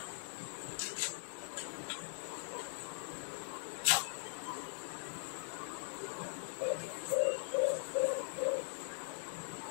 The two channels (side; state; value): right; silent; digital silence